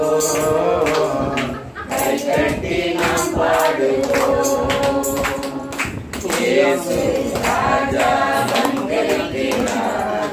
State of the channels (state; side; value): identical; both; correlation 1.00